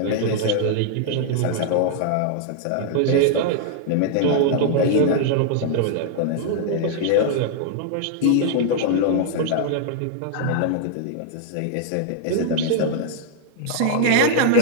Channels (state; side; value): different; both; correlation -0.01